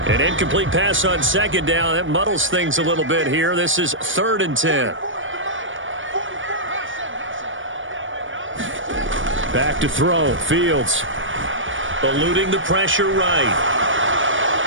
An incomplete pass on second down. That muddles things a little bit here. This is 3rd and 10. Back to throw. Fields. Eluding the pressure right.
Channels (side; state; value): left; late; 0.57 ms